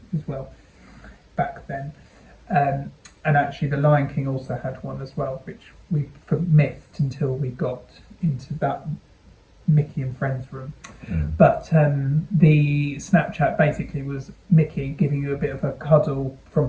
as well back then. And actually, the Lion King also had one as well, which we missed until we got into that Mickey and Friends room. But the Snapchat basically was Mickey giving you a bit of a cuddle from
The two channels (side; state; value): both; identical; correlation 1.00